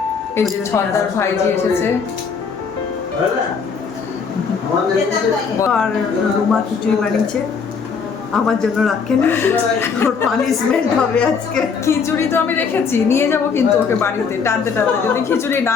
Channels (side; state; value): right; quieter; 5.8 dB